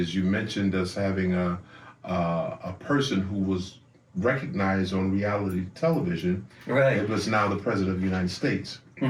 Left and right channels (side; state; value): both; identical; correlation 1.00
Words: You mentioned us having a person who was recognized on reality television. Right. It was now the president of the United States.